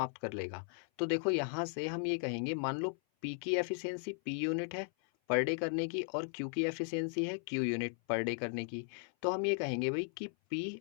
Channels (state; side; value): silent; right; 53 dB below the other